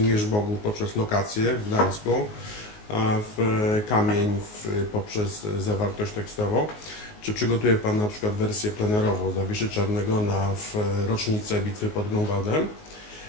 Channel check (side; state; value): right; late; 19 ms